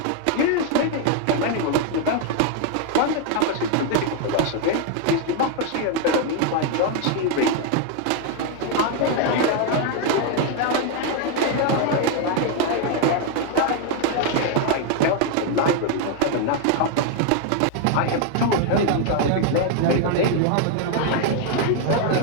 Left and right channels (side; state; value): both; different; correlation 0.00